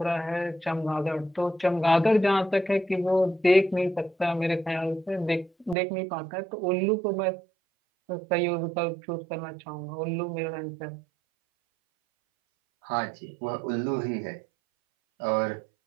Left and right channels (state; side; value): drops out; left; at 5.8 s